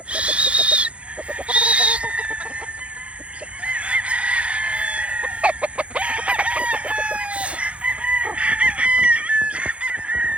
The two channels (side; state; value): left; late; 0.061 ms